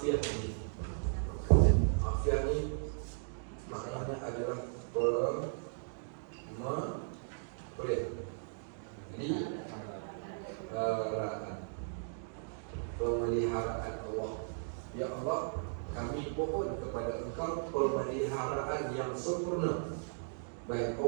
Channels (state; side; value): silent; left; digital silence